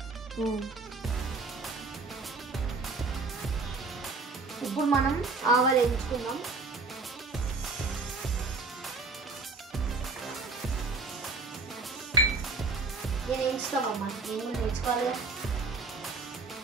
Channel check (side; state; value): left; quieter; 3.9 dB